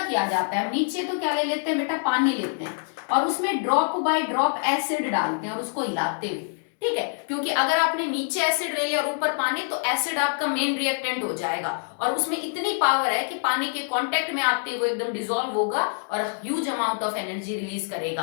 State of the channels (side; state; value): right; silent; digital silence